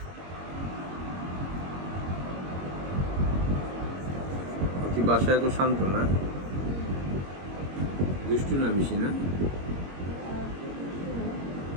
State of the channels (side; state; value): left; late; 22 ms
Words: বাসায় এত শান্ত না, দুষ্টু না বেশি না?